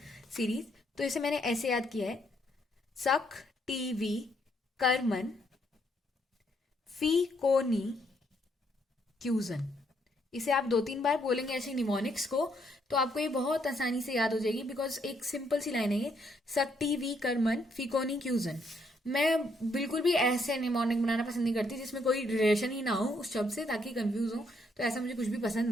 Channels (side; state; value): both; normal; correlation 0.72